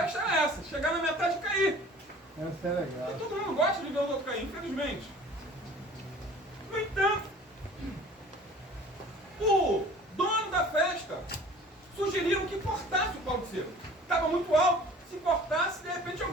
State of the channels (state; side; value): normal; both; correlation 0.47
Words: era essa, chegar na metade e cair. Essa é legal. E todo mundo gosta de ver os outros cair, infelizmente. No entanto, o dono da festa sugeriram que cortasse o pau de sebo. Estava muito alto, se cortasse, de repente